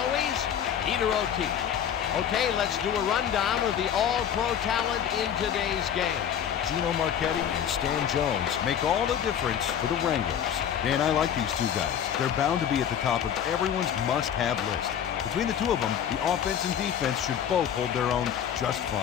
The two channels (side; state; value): right; quieter; 9.0 dB